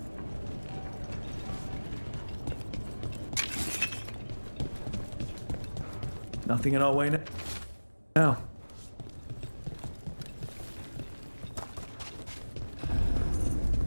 Nothing in our way now.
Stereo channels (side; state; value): both; inverted; correlation -1.00